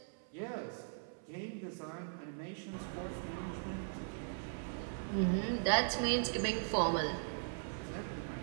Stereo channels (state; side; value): silent; left; 51 dB below the other